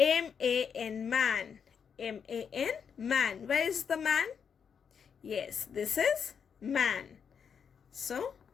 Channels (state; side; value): quieter; right; 6.9 dB